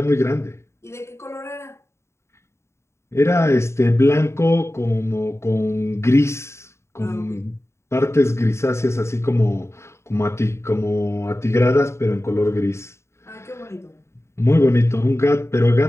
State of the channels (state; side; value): late; right; 0.13 ms